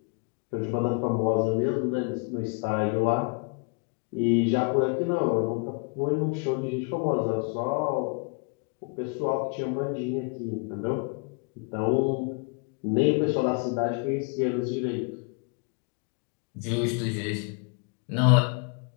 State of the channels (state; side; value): quieter; right; 34.9 dB